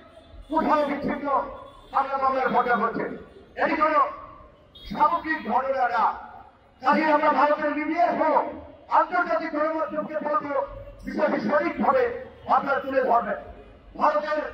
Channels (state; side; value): identical; both; correlation 1.00